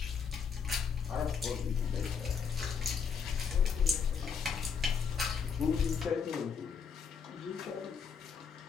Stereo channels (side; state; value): right; quieter; 6.3 dB